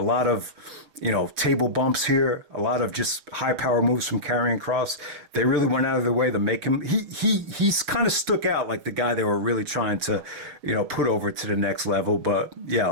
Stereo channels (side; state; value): left; late; 6.4 ms